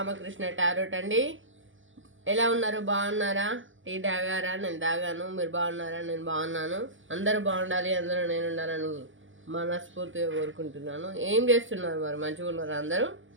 tarot అండి. ఎలా ఉన్నారు? బాగున్నారా? టీ తాగారా? నేను తాగాను. మీరు బాగున్నారా? నేను బాగున్నాను. అందరూ బాగుండాలి, అందరూ నేను ఉండాలని మనస్ఫూర్తిగా కోరుకుంటున్నాను. ఏం చేస్తున్నారు మరి? మంచిగా ఉన్నారా అందరూ?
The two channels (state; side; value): late; left; 0.57 ms